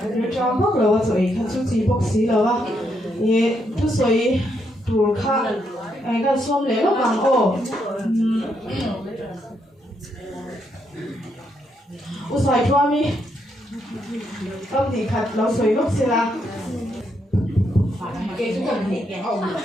ri cham bok lawa choi kha chu chi bok si lawa ye tu soi tur kha ai kan som le lo bang o usai chwa mi kam ni khat lo soi bok si la cái chúng ta bị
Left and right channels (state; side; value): normal; both; correlation 0.78